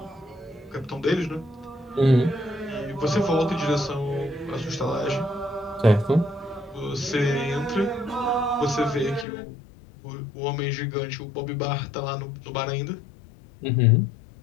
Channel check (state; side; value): drops out; right; at 9.2 s